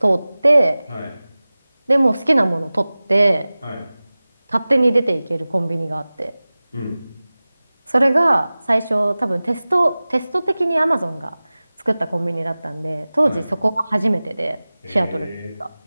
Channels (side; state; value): both; inverted; correlation -0.98